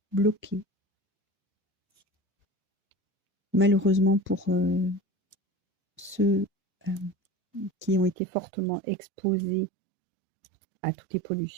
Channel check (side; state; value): left; drops out; at 8.2 s